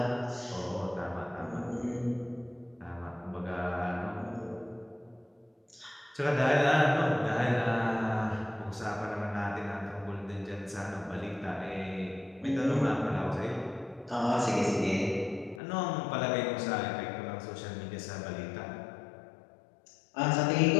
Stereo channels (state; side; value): drops out; right; at 15.6 s